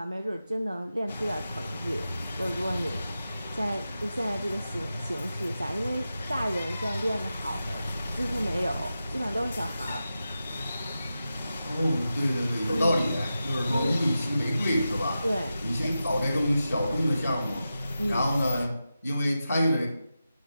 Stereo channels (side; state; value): both; inverted; correlation -0.91